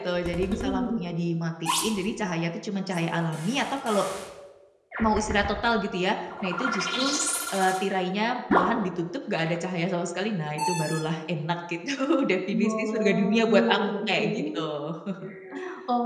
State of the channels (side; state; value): both; identical; correlation 1.00